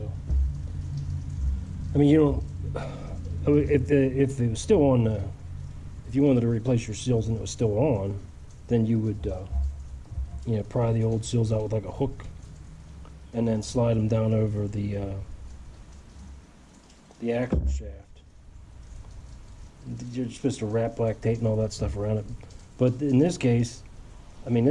I mean, you don't. If it was still on, if you wanted to replace your seals and it was still on, then you would, you know, pry the old seals out with like a hook, and then slide them down over the axle shaft. You're supposed to wrap black tape and all that stuff around it, but in this case, I mean,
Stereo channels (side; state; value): both; identical; correlation 1.00